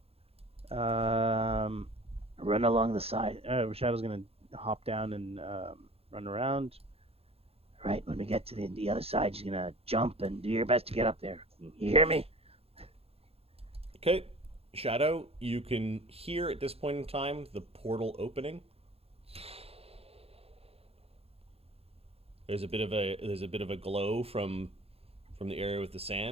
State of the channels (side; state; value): left; late; 0.29 ms